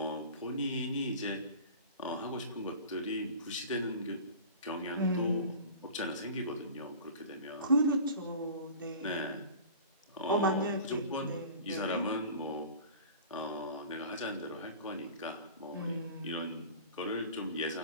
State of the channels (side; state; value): both; inverted; correlation -0.40